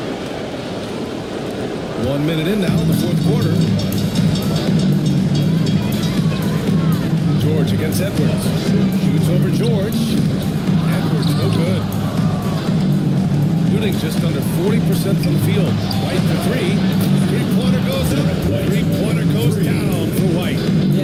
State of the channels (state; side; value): identical; both; correlation 1.00